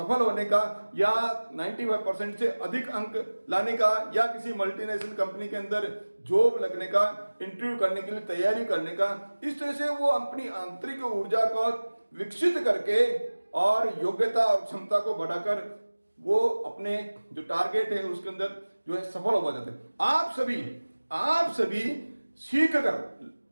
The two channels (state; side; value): inverted; both; correlation -1.00